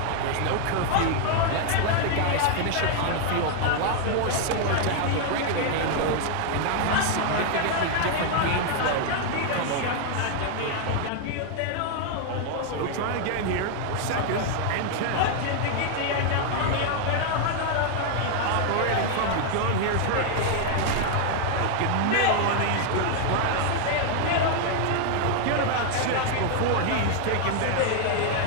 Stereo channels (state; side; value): different; both; correlation 0.00